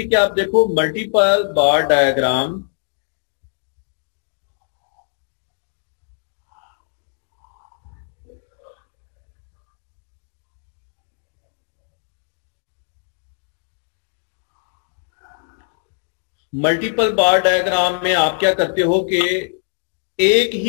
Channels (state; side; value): silent; right; digital silence